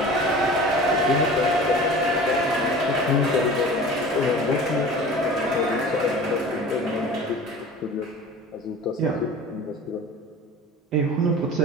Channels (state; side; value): normal; both; correlation 0.39